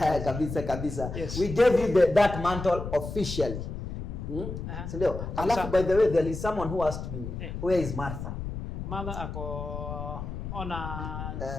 kabisa. Yes. We gave you that mantle officially. Sindio? Alafu by the way, there is someone who asked me, where is Martha? Martha ako on a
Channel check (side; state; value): left; noise; rumble, 6 dB below the sound